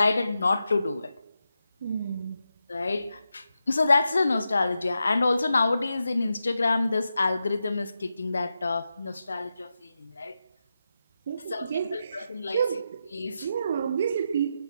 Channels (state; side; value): inverted; both; correlation -0.88